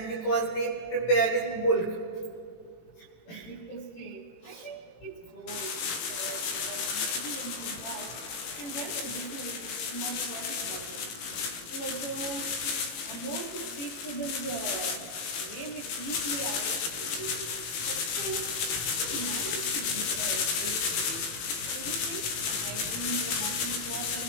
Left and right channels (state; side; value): late; right; 18 ms